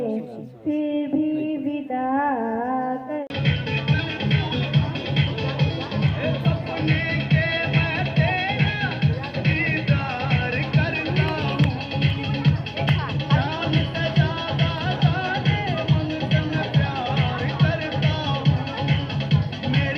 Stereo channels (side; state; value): both; identical; correlation 1.00